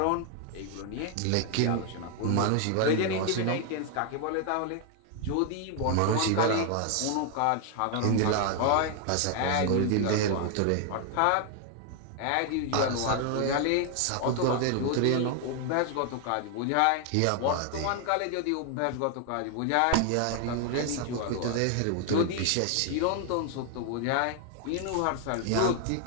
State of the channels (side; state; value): both; different; correlation 0.00